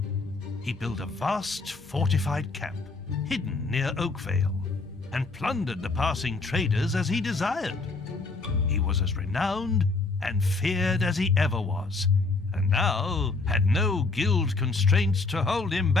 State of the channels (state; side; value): quieter; right; 3.7 dB